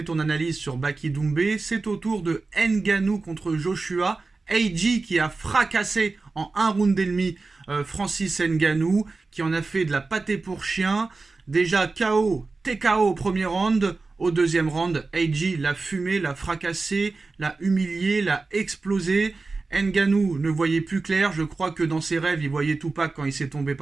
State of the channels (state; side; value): quieter; left; 3.8 dB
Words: ton analyse sur Baki Doumbé. C'est au tour de Ngannou contre Joshua. AJ qui a fracassé en un round et demi Francis Ngannou, qui en a fait de la pâtée pour chien. Déjà KO, TKO au premier round. Au deuxième round, AJ l'a fumé, l'a fracassé, l'a humilié, l'a explosé. Ngannou ne voyait plus clair. Je crois que dans ses rêves, il voyait Tupac quand il s'est tombé